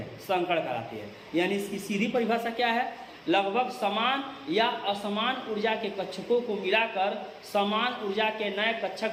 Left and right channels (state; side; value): identical; both; correlation 1.00